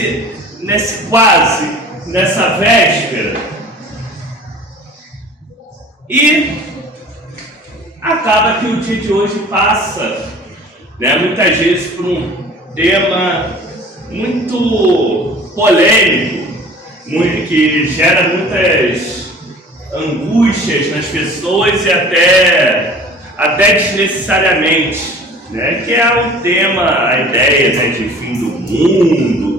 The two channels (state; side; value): normal; both; correlation 0.45